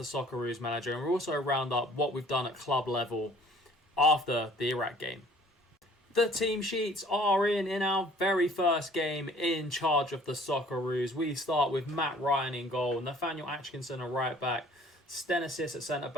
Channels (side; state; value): both; normal; correlation 0.54